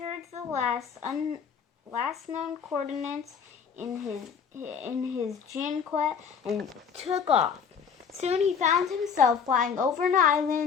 the last known coordinates in his Jinquet and took off. Soon he found himself flying over an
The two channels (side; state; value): right; quieter; 6.8 dB